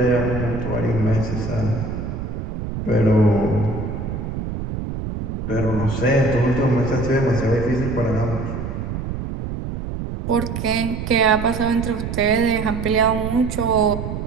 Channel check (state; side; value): noise; right; rumble, 5 dB below the sound